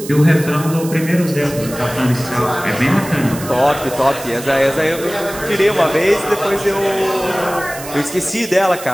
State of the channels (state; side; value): noise; right; hiss, 13 dB below the sound